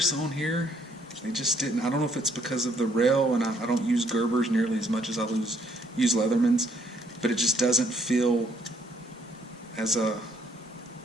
on here, they just didn't. I don't know if it's because of the rail, and I don't use Gerbers nearly as much as I use Leathermans, but it just doesn't feel as I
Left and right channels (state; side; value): normal; both; correlation 0.67